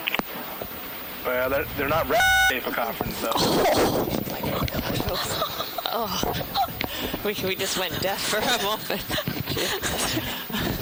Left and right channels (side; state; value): both; identical; correlation 1.00